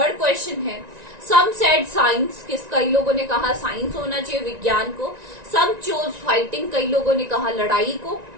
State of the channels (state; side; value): late; left; 1.9 ms